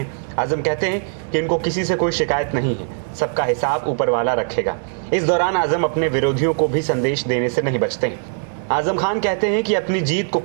आजम कहते हैं कि इनको किसी से कोई शिकायत नहीं है, सबका हिसाब ऊपर वाला रखेगा। इस दौरान आजम अपने विरोधियों को भी संदेश देने से नहीं बचते हैं। आजम खान कहते हैं कि अपनी जीत को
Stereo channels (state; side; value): silent; left; 65 dB below the other